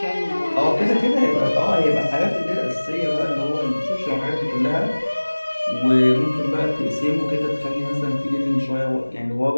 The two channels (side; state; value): both; inverted; correlation -1.00